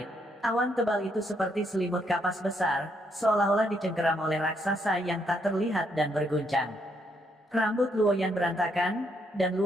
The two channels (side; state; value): both; normal; correlation 0.75